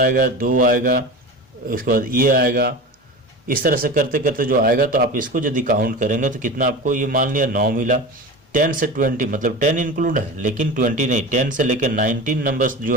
2 आएगा, उसके बाद ये आएगा, इस तरह से करते करते जो आएगा तो आप इसको यदि काउंट करेंगे तो कितना आपको, ये मान लिया 9 मिला। 10 से 20 मतलब 10 इंक्लूड है लेकिन 20 नहीं, 10 से लेकर 19 नंबर्स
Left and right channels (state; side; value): normal; both; correlation 0.30